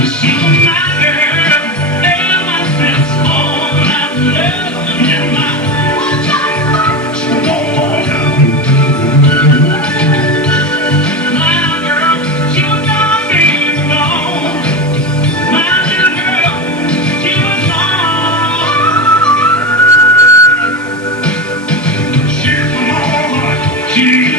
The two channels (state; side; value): normal; both; correlation 0.20